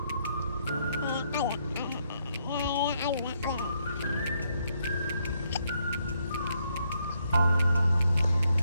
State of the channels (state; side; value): inverted; both; correlation -0.75